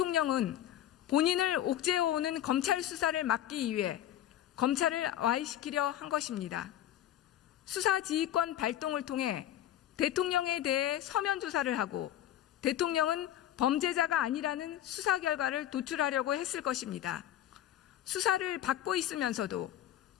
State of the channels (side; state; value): right; quieter; 12.0 dB